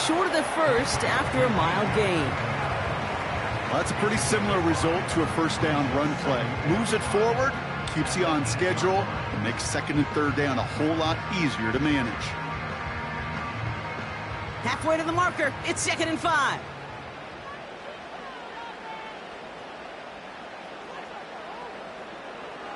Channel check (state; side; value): identical; both; correlation 1.00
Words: short of the first after a mild gain. Well, that's a pretty similar result to a 1st down run play. Moves it forward, keeps you on schedule and makes second and third down a whole lot easier to manage. Halfway to the marker, it's 2nd and 5.